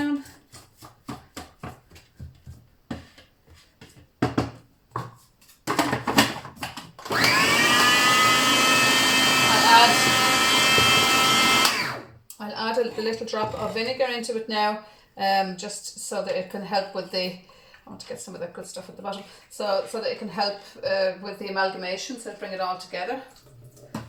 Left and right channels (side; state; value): both; identical; correlation 1.00